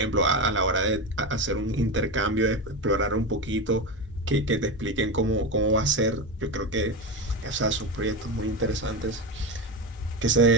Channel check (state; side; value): normal; both; correlation 0.18